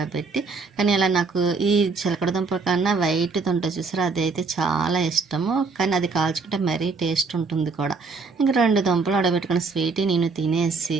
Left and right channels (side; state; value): left; quieter; 4.4 dB